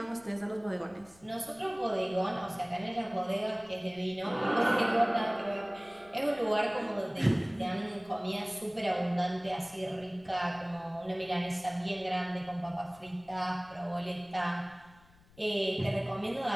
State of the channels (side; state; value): left; noise; rumble, 27 dB below the sound